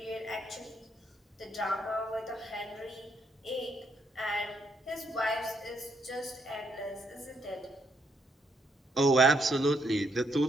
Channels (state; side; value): normal; both; correlation 0.74